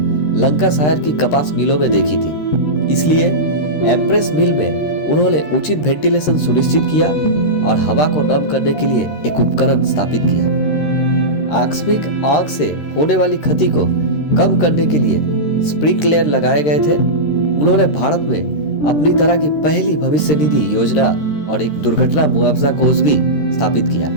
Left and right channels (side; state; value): right; late; 13 ms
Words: लंकाशायर की कपास मिलों में देखी थी। इसलिए एम्प्रेस मिल में उन्होंने उचित वेंटिलेशन सुनिश्चित किया और हवा को नम करने के लिए एक उपकरण स्थापित किया। आकस्मिक आग से होने वाली क्षति को कम करने के लिए स्प्रिंकलर लगाए गए थे। उन्होंने भारत में अपनी तरह की पहली भविष्य निधि योजना और एक दुर्घटना मुआवजा कोष भी स्थापित किया।